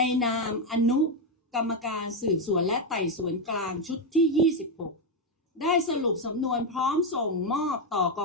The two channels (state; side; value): normal; both; correlation 0.05